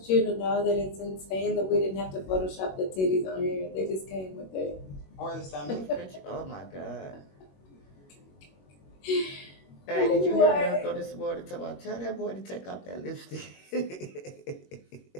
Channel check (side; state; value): right; late; 21 ms